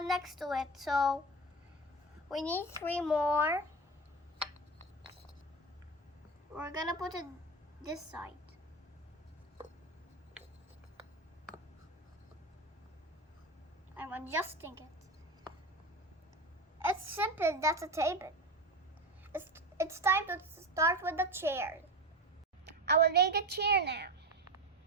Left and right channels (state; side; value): normal; both; correlation 0.23